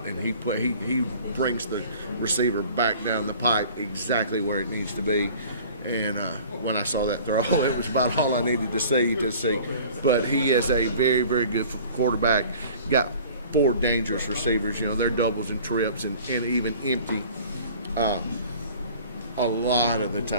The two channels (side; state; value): both; inverted; correlation -0.47